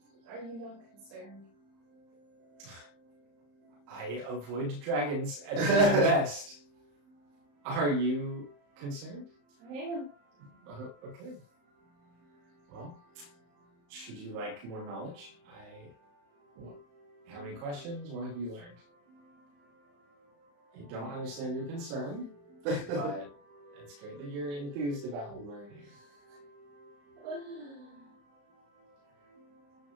Are you not concerned? I avoid dragons at my best. Are you concerned? I am. Okay. Well, should you like more knowledge? How many questions? What have you learned? I don't understand your concern, but it's great that you're enthused about learning.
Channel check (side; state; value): left; late; 35 ms